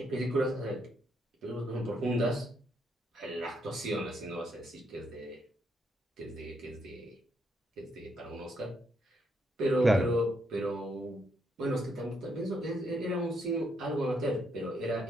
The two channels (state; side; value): normal; both; correlation 0.76